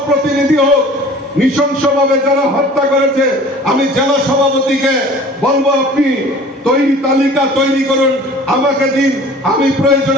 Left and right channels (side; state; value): both; normal; correlation 0.46